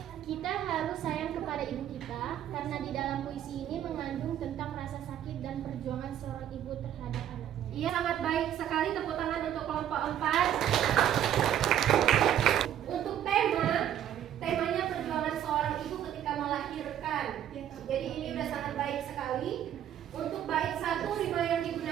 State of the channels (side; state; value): left; quieter; 10.6 dB